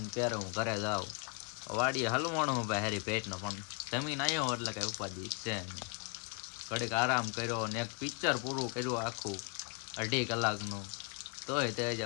ને ક્યારે હું ઘરે જાઉં. વાડીએ હલવાણો હું ભાઈ હારી પેટનો પણ જમીન આવ્યો એટલે કઈ ઉપાધિ છે નહીં. ઘડીક આરામ કર્યો ને એક પિક્ચર પૂરું કર્યું આખું 2.5 કલાકનું. તોય તે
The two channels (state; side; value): quieter; right; 34.4 dB